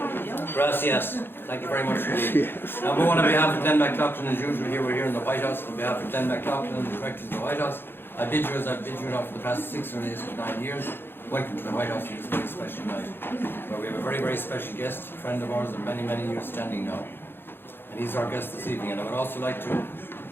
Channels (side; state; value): right; late; 0.10 ms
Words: Gracias. Thank you very much indeed. Now, we want on behalf of Glenn McLaughlin, as usual, we're here in the Whitehouse, on behalf of Glenn McLaughlin and the directors of the Whitehouse, I bid you as I've bid you now for the past 6 or 9 years. Welcome to the Whitehouse on this very special night, where we have a very, very special guest, a friend of ours of many, many years standing now. And he's our guest this evening. And I would also like to